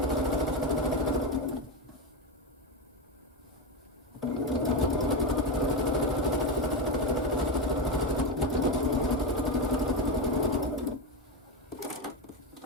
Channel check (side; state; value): both; normal; correlation 0.11